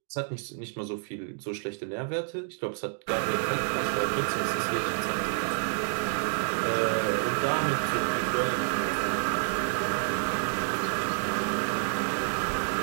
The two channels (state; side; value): silent; left; digital silence